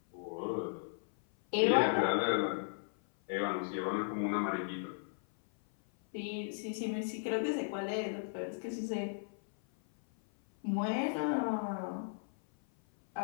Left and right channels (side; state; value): right; silent; 54 dB below the other